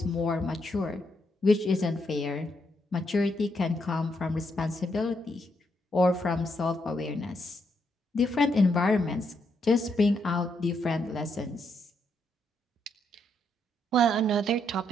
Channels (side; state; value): both; normal; correlation 0.78